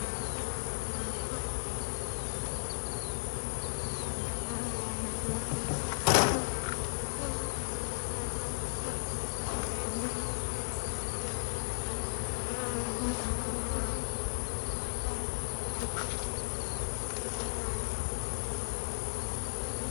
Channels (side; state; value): right; silent; 54 dB below the other